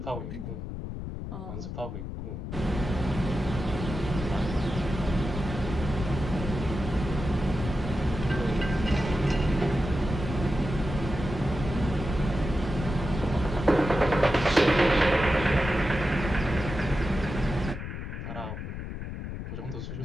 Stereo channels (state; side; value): noise; left; rumble, 7 dB below the sound